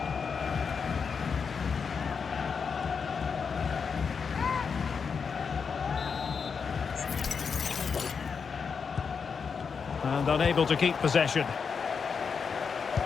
And unable to keep possession.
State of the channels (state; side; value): quieter; right; 5.9 dB